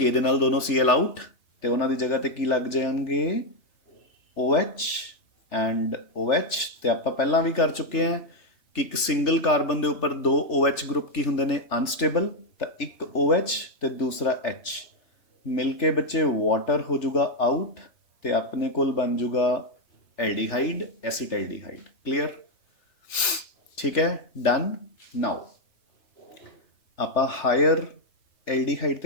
ਦੇ ਨਾਲ ਦੋਨੋਂ Cl ਆਊਟ, ਤੇ ਉਹਨਾਂ ਦੀ ਜਗ੍ਹਾ ਤੇ ਕੀ ਲੱਗ ਜਾਣਗੇ, OH ਐਂਡ OH। ਤੇ ਆਪਾਂ ਪਹਿਲਾਂ ਵੀ ਕਰ ਚੁੱਕੇ ਹਾਂ ਕਿ ਇੱਕ ਸਿੰਗਲ ਕਾਰਬਨ ਦੇ ਉੱਪਰ 2 OH ਗਰੁੱਪ ਕੀ ਹੁੰਦੇ ਨੇ, ਅਨਸਟੇਬਲ। ਤਾਂ ਇੱਕ OH ਤੇ ਦੂਸਰਾ H ਮਿਲ ਕੇ ਬੱਚੇ ਵਾਟਰ ਹੋ ਜਾਊਗਾ ਆਊਟ, ਤੇ ਆਪਣੇ ਕੋਲ ਬਣ ਜਾਊਗਾ ਐਲਡੀਹਾਈਡ, ਐਸੀਟਾਲਡੀਹਾਈਡ। ਕਲੀਅਰ, ਠੀਕ ਹੈ, ਡਨ। ਨਾਓ ਆਪਾਂ ਹਾਇਰ ਐਲਡੀਹਾਈਡ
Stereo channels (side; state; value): right; late; 3.3 ms